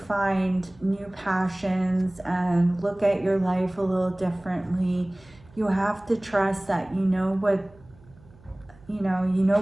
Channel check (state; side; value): noise; right; hum, 26 dB below the sound